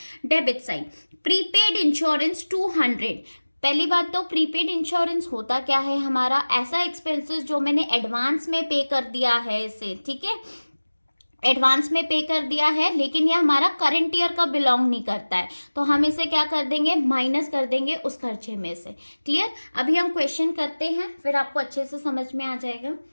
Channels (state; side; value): inverted; both; correlation -1.00